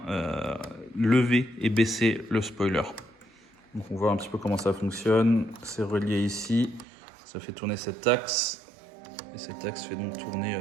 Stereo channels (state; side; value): drops out; left; at 6.9 s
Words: lever et baisser le spoiler. Donc, on voit un petit peu comment ça fonctionne. C'est relié ici. Ça fait tourner cet axe. Et cet axe fait donc tourner